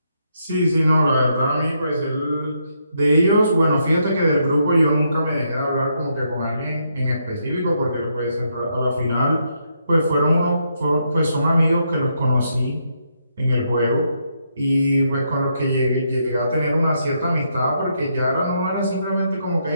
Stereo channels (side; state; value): both; inverted; correlation -0.78